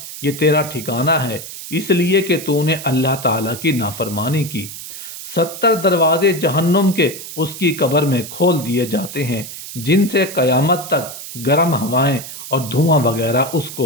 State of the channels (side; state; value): right; noise; hiss, 11 dB below the sound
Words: یہ تیرا ٹھکانہ ہے اس لیے کہ تو نے اللہ تعالیٰ کی نافرمانی کی۔ 70 دروازے جہنم کے اس کی قبر میں کھول دیے جاتے ہیں، جن سے قیامت تک گرم ہوائیں اور دھواں وغیرہ اس